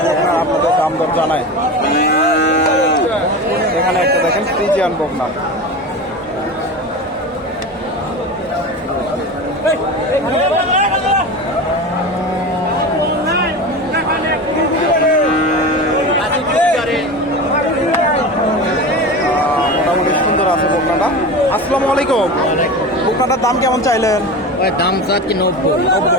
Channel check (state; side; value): normal; both; correlation 0.28